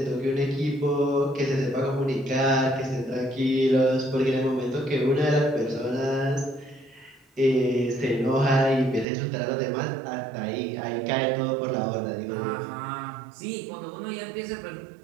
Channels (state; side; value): drops out; left; at 9.1 s